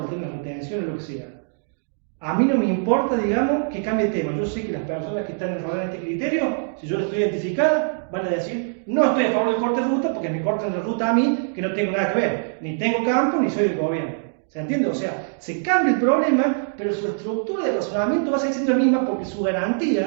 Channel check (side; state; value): left; silent; digital silence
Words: el tema de retención o lo que sea. A mí no me importa, digamos, que cambie el tema. Yo sé que las personas que están enrodadas en este criterio, si yo lo estoy identificada, van a decir, no estoy a favor del corte de ruta porque me cortan la ruta a mí, que no tengo nada que ver. Ni tengo campo, ni soy del gobierno. ¿Se entiende? O sea, se cambia el problema, pero su estructura de razonamiento va a seguir siendo la misma porque su